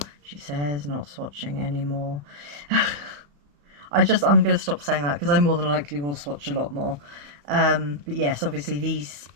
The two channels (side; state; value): left; late; 34 ms